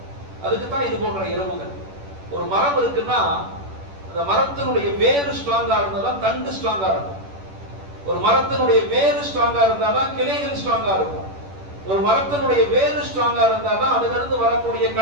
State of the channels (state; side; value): late; left; 10 ms